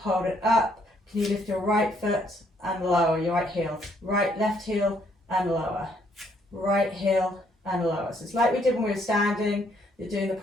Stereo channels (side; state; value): both; normal; correlation 0.69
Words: it up. Can you lift your right foot and lower your right heel, left heel and lower, right heel and lower. So it's like we did when we were standing, you're doing the